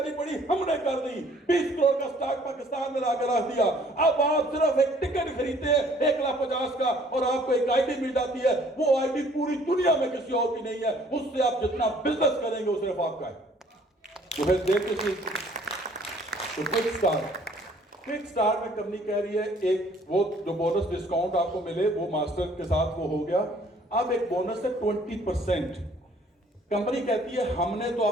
पड़ी, हमने कर दी। 20 करोड़ का स्टॉक पाकिस्तान में लाकर रख दिया। अब आप सिर्फ एक टिकट खरीदते हैं 1,50,000 का और आपको एक आईडी मिल जाती है। वो आईडी पूरी दुनिया में किसी और की नहीं है, उससे आप जितना बिजनेस करेंगे वो सिर्फ आपका है। तो फिर देखिए, तो क्विक स्टार्ट में कंपनी कह रही है एक वो जो बोनस डिस्काउंट आपको मिले वो मास्टर के साथ वो हो गया। अब एक बोनस है 20%। कंपनी कहती है हमने तो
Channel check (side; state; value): both; normal; correlation 0.58